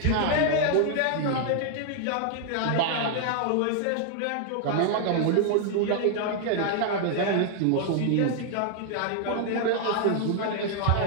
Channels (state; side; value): different; both; correlation 0.00